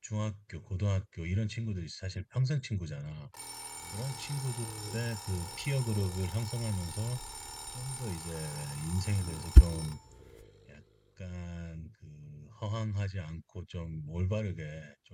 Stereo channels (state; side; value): identical; both; correlation 1.00